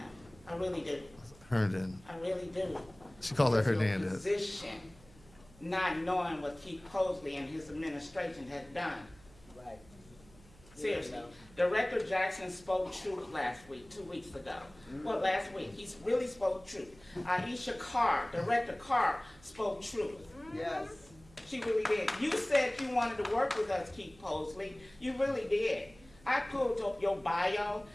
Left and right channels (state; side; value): noise; right; hum, 24 dB below the sound